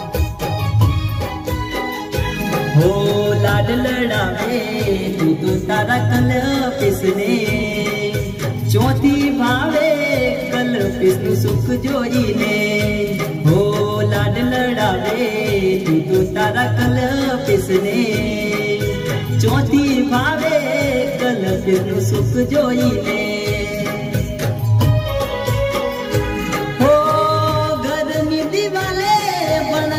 हो लाड लड़ावे तू तो तारा कल पिसने चौथी भावे कल पिसनु सुख जोई ने हो लाड लड़ावे तू तो तारा कल पिसने चौथी भावे कल पिसनु सुख जोई ने हो घरनी दिवाले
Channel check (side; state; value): both; identical; correlation 1.00